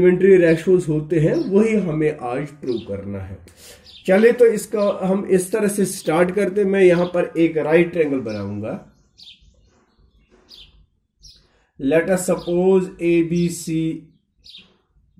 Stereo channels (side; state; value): both; identical; correlation 1.00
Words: रेशोज होते हैं वही हमें आज प्रूव करना है। चलिए तो इसका हम इस तरह से स्टार्ट करते हैं। मैं यहां पर एक राइट ट्रायंगल बनाऊंगा। Let us suppose ABC